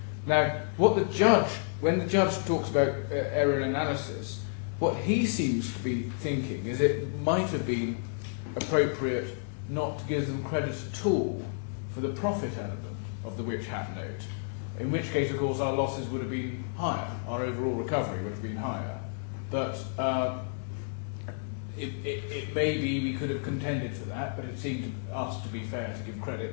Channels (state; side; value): silent; right; 57 dB below the other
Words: Now, what the judge, when the judge talks about error analysis, what he seems to be thinking is it might have been appropriate not to give them credit at all for the profit element of the witch hat note, in which case, of course, our losses would have been higher, our overall recovery would have been higher. But it may be we could have contended for that, but it seemed to us to be fair to give credit